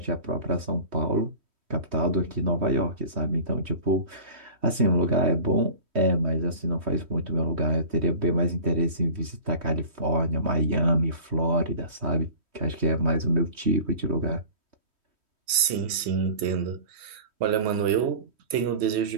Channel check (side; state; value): left; late; 3.1 ms